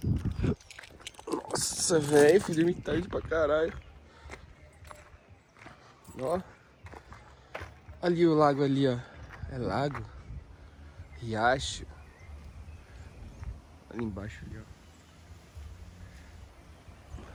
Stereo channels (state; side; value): identical; both; correlation 1.00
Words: Nossa, velho, fui dormir tarde pra caralho. Ó. Ali o lago ali, ó. É lago? Riacho. Ali embaixo ali, ó.